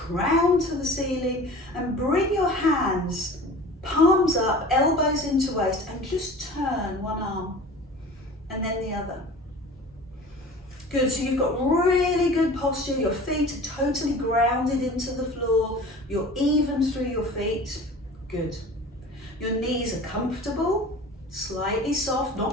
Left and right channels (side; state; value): both; normal; correlation 0.41